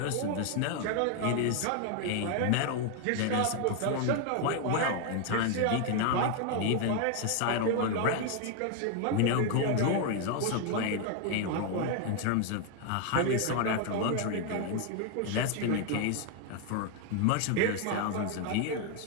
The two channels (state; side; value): different; both; correlation 0.01